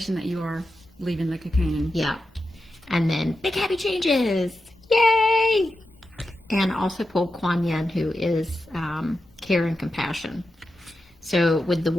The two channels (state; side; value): normal; both; correlation 0.90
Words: that you are leaving the cocoon. Yeah. And then big happy changes. Yay! And also pulled Kuan Yin, who is care and compassion. So with the